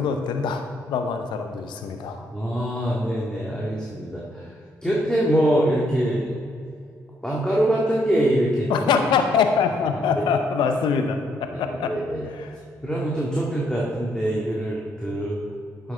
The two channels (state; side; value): normal; both; correlation 0.71